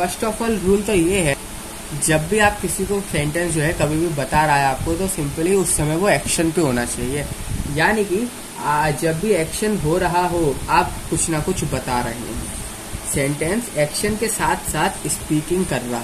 ऑफ ऑल रूल तो ये है, जब भी आप किसी को सेंटेंस जो है कभी भी बता रहा है आपको, तो सिंपली उस समय वो एक्शन पे होना चाहिए। यानी कि जब भी एक्शन हो रहा हो, आप कुछ ना कुछ बता रहे हैं, सेंटेंस एक्शन के साथ साथ स्पीकिंग कर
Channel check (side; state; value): both; identical; correlation 1.00